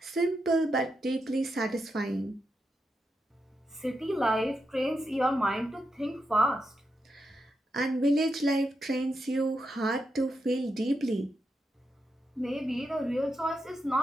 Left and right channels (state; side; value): normal; both; correlation 0.85